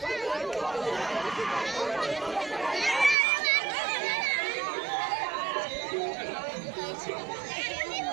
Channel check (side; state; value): left; drops out; at 3.2 s